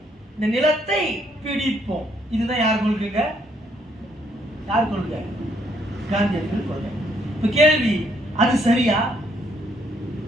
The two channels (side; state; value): both; normal; correlation 0.70